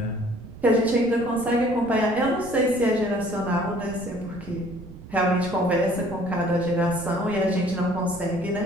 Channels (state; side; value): noise; right; rumble, 16 dB below the sound